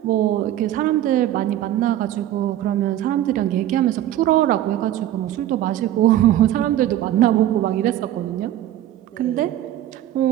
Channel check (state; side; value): quieter; left; 12.8 dB